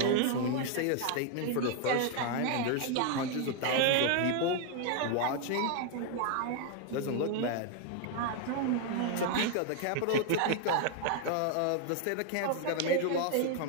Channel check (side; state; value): both; different; correlation 0.01